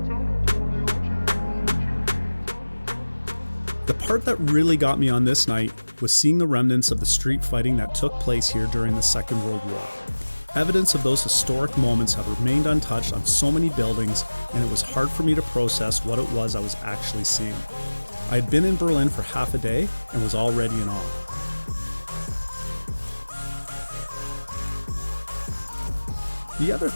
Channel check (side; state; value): both; inverted; correlation -1.00